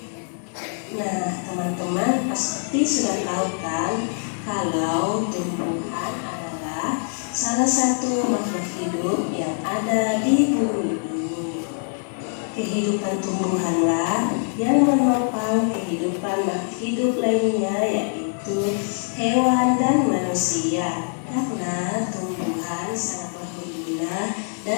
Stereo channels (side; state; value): right; silent; 63 dB below the other